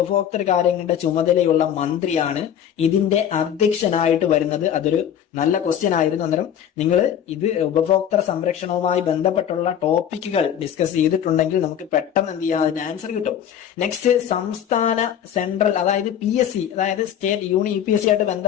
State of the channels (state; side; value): quieter; right; 9.5 dB